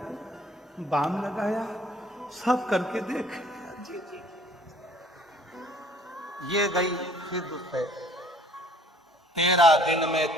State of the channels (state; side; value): normal; both; correlation 0.57